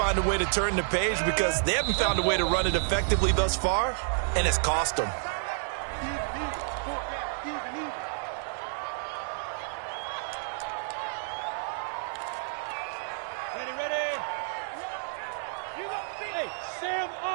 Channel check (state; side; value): silent; left; digital silence